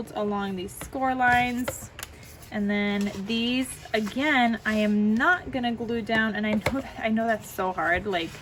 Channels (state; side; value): identical; both; correlation 1.00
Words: along these score lines, and then these, again, I am not gonna glue down, and I know that's so hard. Like,